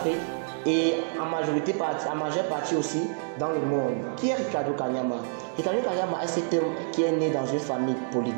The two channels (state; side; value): silent; left; digital silence